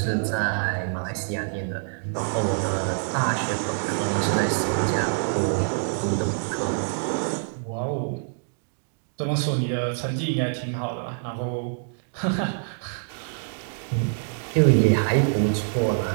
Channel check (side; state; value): left; silent; digital silence